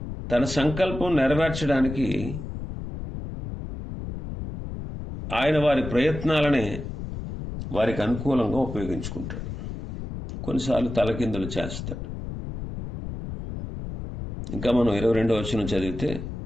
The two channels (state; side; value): noise; left; rumble, 8 dB below the sound